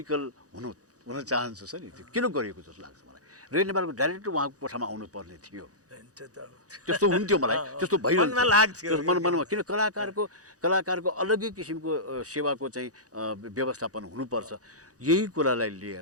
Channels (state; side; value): late; left; 0.67 ms